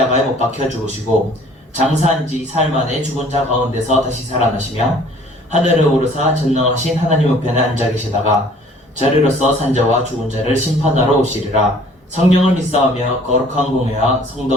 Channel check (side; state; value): both; normal; correlation 0.54